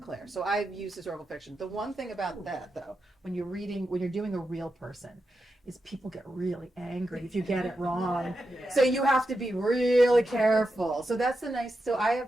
So I've used historical fiction. The one thing about that, though, when you're doing a real person, is people get really angry if you get it wrong. So you have to be really careful. So that's the nice. So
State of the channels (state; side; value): normal; both; correlation 0.88